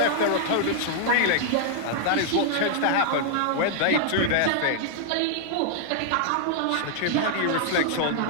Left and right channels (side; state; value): both; different; correlation 0.00